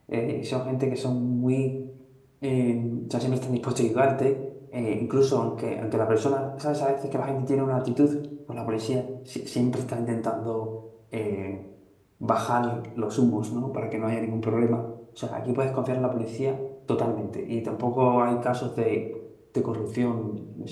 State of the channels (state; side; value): identical; both; correlation 1.00